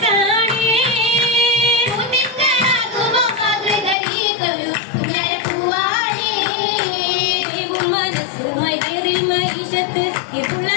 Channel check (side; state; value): right; drops out; at 4.0 s